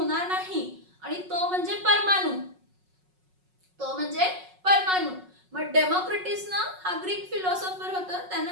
नाही आणि तो म्हणजे परमाणू. तो म्हणजे परमाणू. मग डेमोक्रिटिस ना हा ग्रीक फिलॉसॉफर होता,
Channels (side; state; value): left; late; 5.4 ms